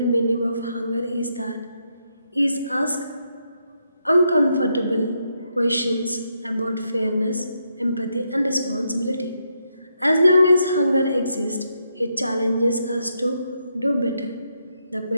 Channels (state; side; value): inverted; both; correlation -0.79